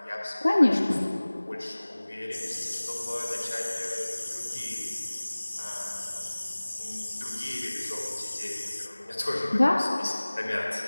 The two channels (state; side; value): inverted; both; correlation -1.00